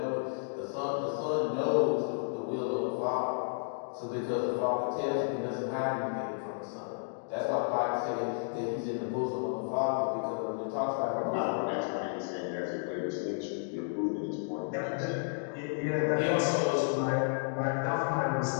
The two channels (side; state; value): right; silent; digital silence